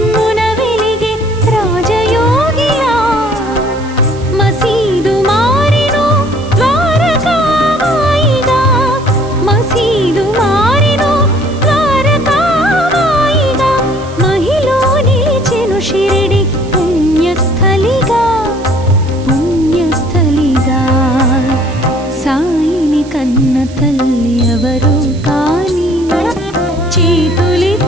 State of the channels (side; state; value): right; noise; hiss, 22 dB below the sound